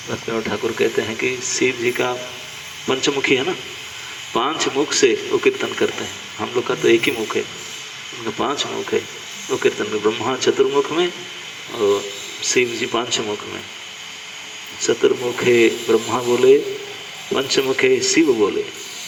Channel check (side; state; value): both; identical; correlation 1.00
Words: भक्तिविनोद ठाकुर कहते हैं कि शिव जी का पंचमुखी है ना, 5 मुख से वो कीर्तन करते हैं। हम लोग का तो एक ही मुख है, उनका 5 मुख है। वो कीर्तन में ब्रह्मा चतुर्मुख में और शिव जी 5 मुख में। चतुर्मुखे ब्रह्मा बोले, पंचमुखे शिव बोले,